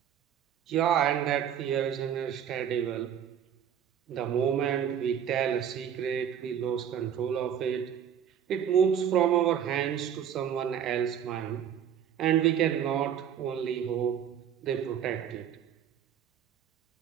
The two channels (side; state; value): left; quieter; 9.0 dB